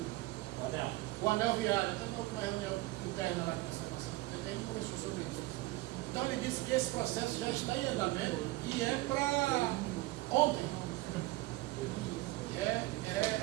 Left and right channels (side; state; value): left; quieter; 19.6 dB